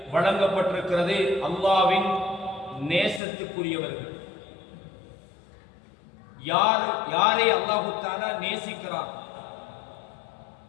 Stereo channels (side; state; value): right; drops out; at 3.2 s